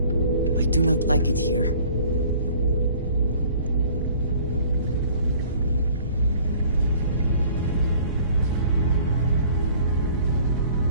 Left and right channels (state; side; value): inverted; both; correlation -0.52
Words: do not like it here.